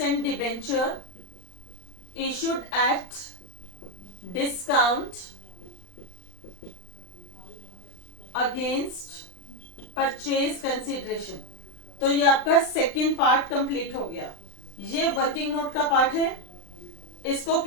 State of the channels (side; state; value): right; late; 39 ms